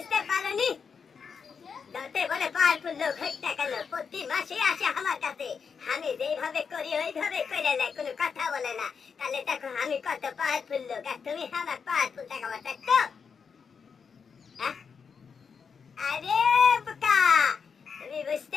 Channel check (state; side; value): quieter; right; 6.1 dB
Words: পারোনি? যত বলে পাওয়ারফুল লোক হোক না কেন প্রতি মাসে আসে আমার কাছে, আমি যেইভাবে করি ওইভাবে করে নেয়, কোনো কথা বলে না। তাহলে দেখো আমি কত পাওয়ারফুল লোক, আর তুমি আমার পাওয়ারফুল দেখাবার দেখছো? আরে বোকা, তুমি